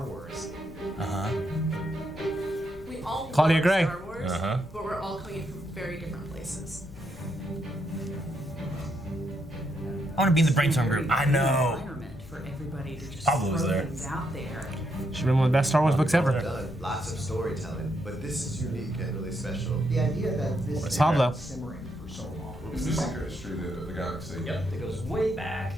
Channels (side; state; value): left; noise; rumble, 18 dB below the sound